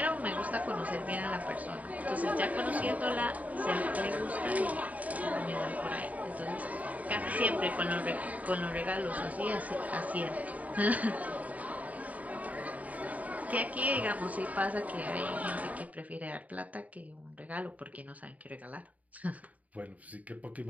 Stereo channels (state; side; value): late; left; 0.072 ms